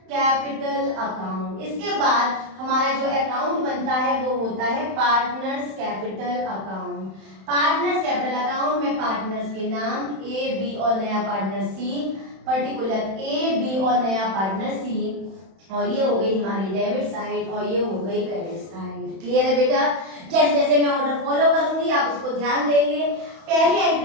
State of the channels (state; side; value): late; left; 31 ms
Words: capital account. इसके बाद हमारा जो अकाउंट बनता है वो होता है partners capital account. Partners capital account में पार्टनर्स के नाम ए, बी और नया पार्टनर सी, पर्टिकुलर ए, बी और नया पार्टनर सी, और ये हो गई हमारी डेबिट साइड और ये हो गई क्रेडिट साइड। क्लियर है बेटा, जैसे जैसे मैं ऑर्डर फॉलो करूंगी आप उसको ध्यान देंगे। पहली